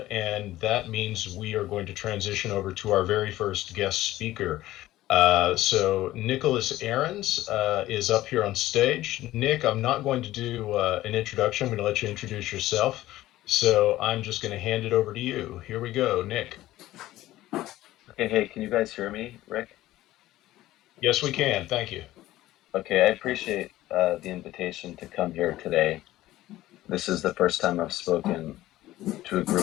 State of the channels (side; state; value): right; quieter; 15.6 dB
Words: and that means we are going to transition over to our very first guest speaker. So Nicholas Ahrens is up here on stage. Nick, I'm not going to do an introduction. I'm going to let you introduce yourself. So I'm just going to hand it over to you. Here we go, Nick. Okay, hey, can you guys hear me, Rick? Yes, we can. Thank you. Okay, I appreciate the invitation to come here today. This is the first time I've spoken to a